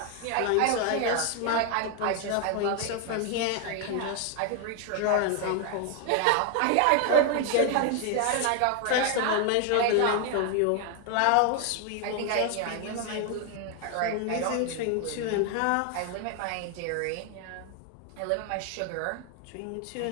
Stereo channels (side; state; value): both; different; correlation 0.00